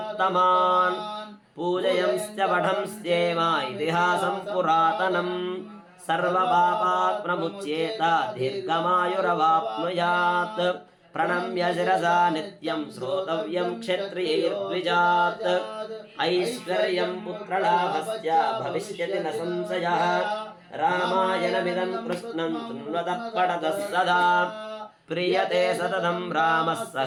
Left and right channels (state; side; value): identical; both; correlation 1.00